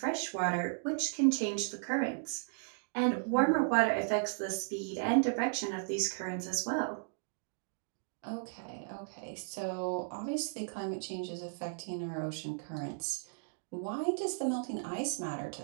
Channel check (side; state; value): left; silent; digital silence